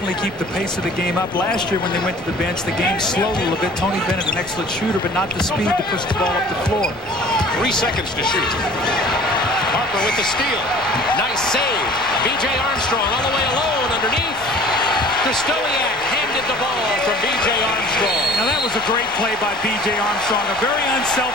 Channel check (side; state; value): both; normal; correlation 0.48